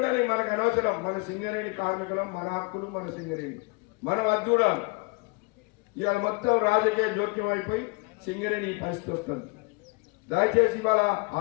మనకు అనవసరం, మన సింగరేణి కార్మికులం, మన హక్కులు, మన సింగరేణి మనం అది చూడాలి. ఇవాళ మొత్తం రాజకీయ జోక్యం అయిపోయి సింగరేణి ఈ పరిస్థితి వస్తుంది. దయచేసి ఇవాళ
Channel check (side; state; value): right; quieter; 27.9 dB